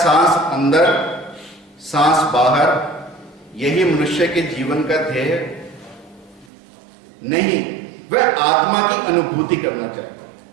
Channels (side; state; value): left; drops out; at 6.5 s